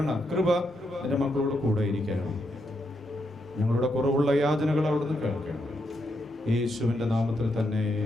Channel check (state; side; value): normal; both; correlation 0.81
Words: കൃപ എൻ്റെ മക്കളോട് കൂടെ ഇരിക്കണം. ഞങ്ങളുടെ കുറവുള്ള യാചനകൾ അവിടുന്ന് കേൾക്കണം. യേശുവിൻ്റെ നാമത്തിൽ തന്നെ.